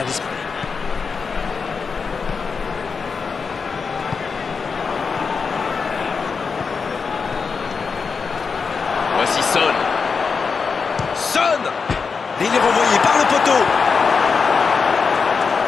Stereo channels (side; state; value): right; quieter; 5.3 dB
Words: d'esprit. Voici Son. Son. Et il est renvoyé par le poteau.